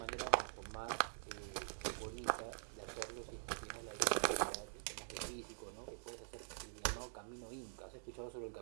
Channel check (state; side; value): silent; left; digital silence